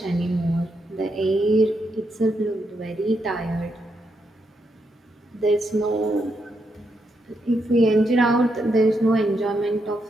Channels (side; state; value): both; normal; correlation 0.81